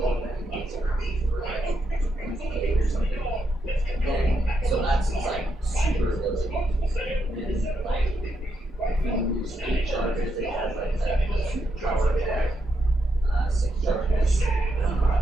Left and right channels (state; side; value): normal; both; correlation 0.81